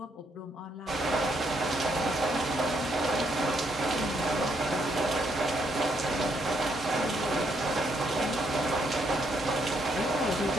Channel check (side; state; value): both; normal; correlation 0.74